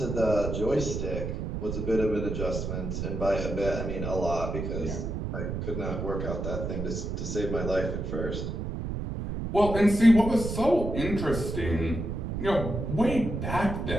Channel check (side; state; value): right; noise; rumble, 4 dB below the sound